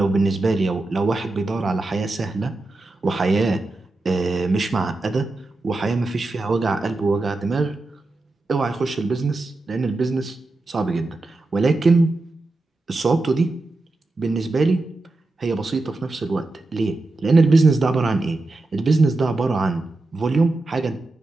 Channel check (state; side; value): quieter; left; 3.1 dB